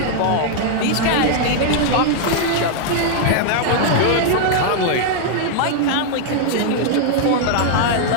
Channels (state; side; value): different; both; correlation -0.01